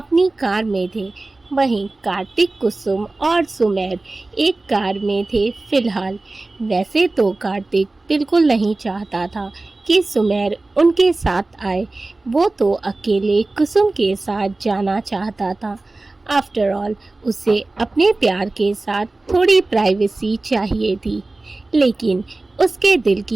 कार में थे, वहीं कार्तिक, कुसुम और सुमेर एक कार में थे फिलहाल। वैसे तो कार्तिक बिल्कुल नहीं चाहता था कि सुमेर उनके साथ आए, वो तो अकेले कुसुम के साथ जाना चाहता था। आफ्टर ऑल उसे अपने प्यार के साथ थोड़ी प्राइवेसी चाहिए थी, लेकिन उसके दिल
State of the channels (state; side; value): quieter; left; 3.1 dB